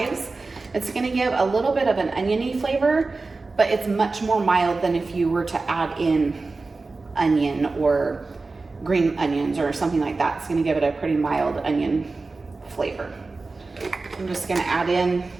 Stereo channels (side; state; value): left; quieter; 3.7 dB